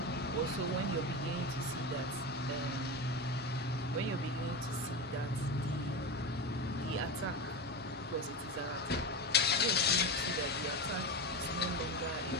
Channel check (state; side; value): normal; both; correlation 0.21